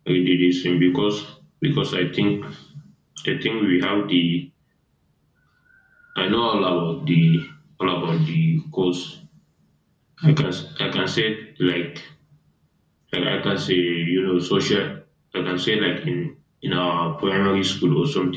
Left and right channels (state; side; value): identical; both; correlation 1.00